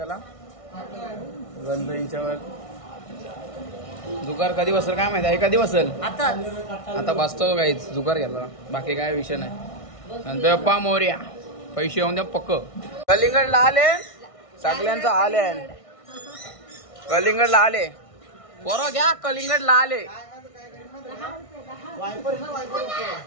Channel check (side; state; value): right; late; 1.6 ms